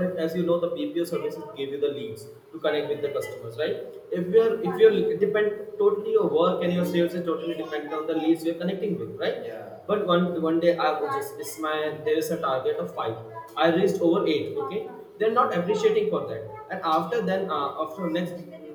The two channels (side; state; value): both; identical; correlation 1.00